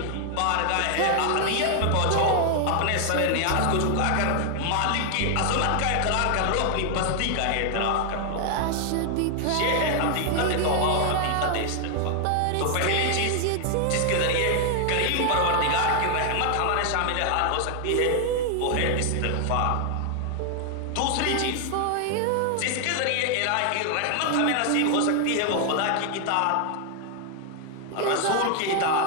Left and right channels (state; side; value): different; both; correlation 0.00